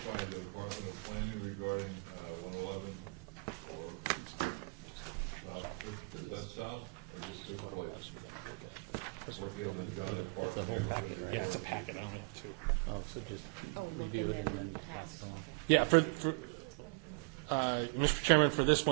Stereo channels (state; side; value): quieter; left; 31.1 dB